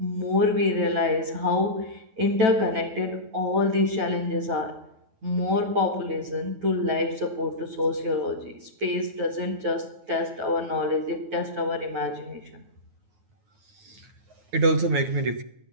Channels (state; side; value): late; left; 9.4 ms